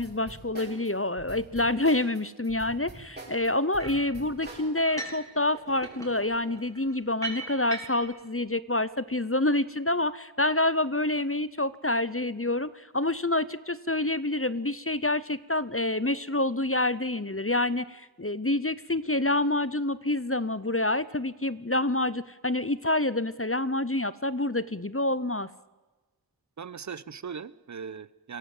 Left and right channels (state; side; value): normal; both; correlation -0.11